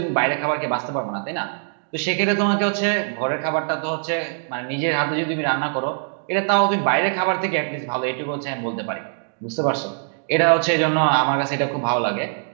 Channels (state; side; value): silent; left; digital silence